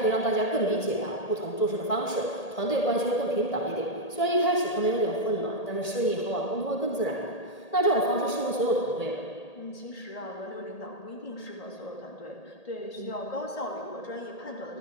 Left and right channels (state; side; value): late; right; 1.8 ms